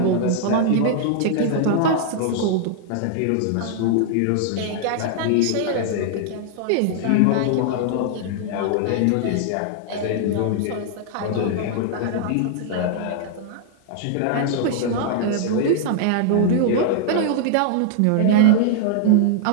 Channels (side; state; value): both; different; correlation -0.01